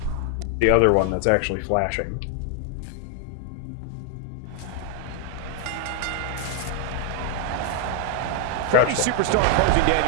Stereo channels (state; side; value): different; both; correlation 0.00